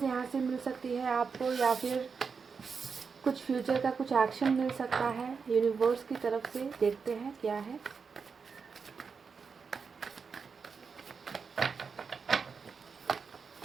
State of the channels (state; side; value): quieter; left; 5.5 dB